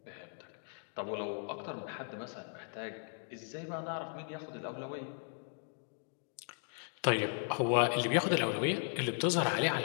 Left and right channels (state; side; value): silent; right; 53 dB below the other